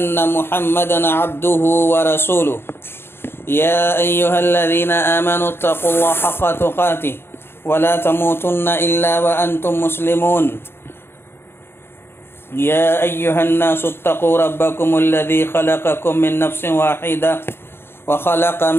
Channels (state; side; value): late; right; 0.11 ms